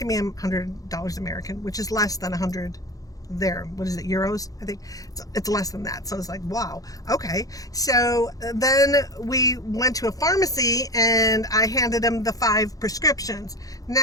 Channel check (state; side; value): late; right; 0.17 ms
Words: me $100 American, which is less than $100 there. What is it, euros? I think it's less than that. So it's like, wow, okay. So then we went to a pharmacy and I handed him the 5 prescriptions.